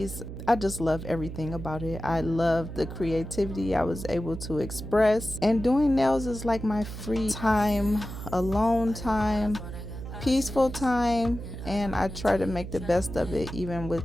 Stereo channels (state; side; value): noise; right; hum, 9 dB below the sound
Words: I just love everything about it. I love the creativity I was able to express, and doing nails is like my free time, alone time, peaceful time, and I try to make the best of it even